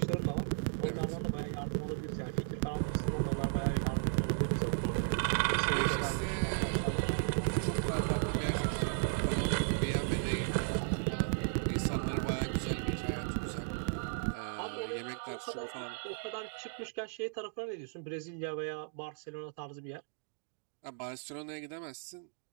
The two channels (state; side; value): silent; left; digital silence